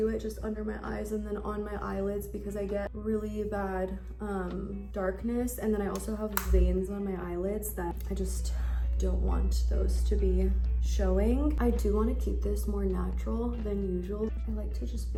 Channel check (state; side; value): identical; both; correlation 1.00